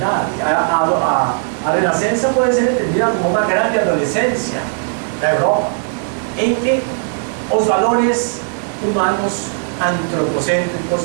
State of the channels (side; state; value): left; silent; digital silence